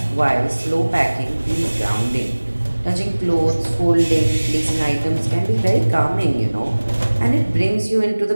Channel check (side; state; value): both; inverted; correlation -1.00